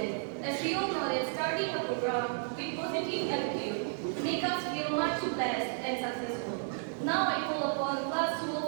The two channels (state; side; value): silent; left; digital silence